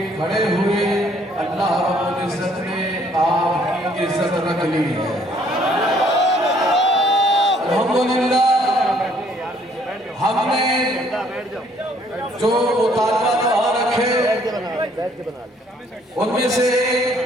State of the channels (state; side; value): normal; both; correlation 0.63